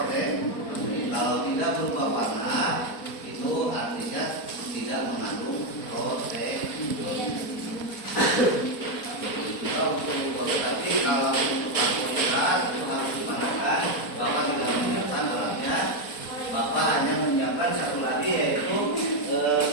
Kalau tidak berupa warna, itu artinya tidak mengandung protein. Tapi kalau untuk karbohidrat itu harus dipandangkan Bapak tidak menyiapkan alatnya. Bapak hanya menyiapkan satu lagi, yaitu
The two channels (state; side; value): late; right; 4.1 ms